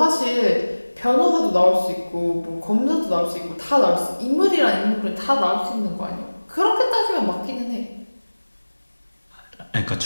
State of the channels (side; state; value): both; inverted; correlation -1.00